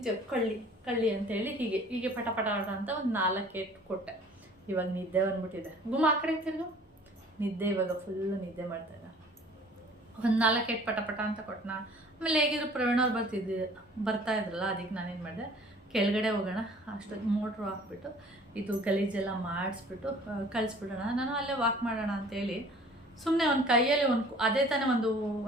ಕಳ್ಳಿ ಅಂತೇಳಿ ಹೀಗೆ ಪಟ ಅಂತ ಒಂದು 4 ಏಟು ಕೊಟ್ಟೆ. ಇವಾಗ ನಿದ್ದೆ ಬಂದ್ಬಿಟ್ಟಿದೆ. ಗುಮ್ಮ ಆ ಕಡೆ ತಿರ್ಗು, ನಿದ್ದೆ ಇವಾಗ ಫುಲ್ಲು ನಿದ್ದೆ ಮಾಡ್ತಾಯಿದ್ದ. ಒಂದು 4 ಏಟು ಪಟ ಪಟ ಅಂತ ಕೊಟ್ಟನ. ಆಮೇಲೆ ಹೇಗಿದ್ರು ಪ್ರವೀಣ್ ಅವ್ರು ಬರ್ತಾ ಇದ್ರಲ್ಲ, ಅದಕ್ಕೆ ನಾನೇನು ಮಾಡಿದೆ, ಕೆಳಗಡೆ ಹೋಗೋಣ, ಅಷ್ಟೊಂದು ಮೋಟ್ರು ಹಾಕ್ಬಿಟ್ಟು ಇದು ಗಲೀಜೆಲ್ಲ ಮಾಡಿಸ್ಬಿಟ್ಟು ಕಳಿಸ್ಬಿಡೋಣ, ನಾನು ಅಲ್ಲೇ ವಾಕ್ ಮಾಡೋಣ ಅಂತೇಳಿ ಸುಮ್ಮನೆ ಒಂದು ಕೈಯಲ್ಲಿ ಅದೇ ತಾನೇ ಒಂದು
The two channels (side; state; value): both; normal; correlation 0.50